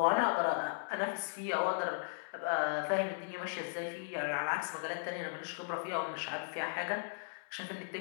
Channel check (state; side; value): silent; right; digital silence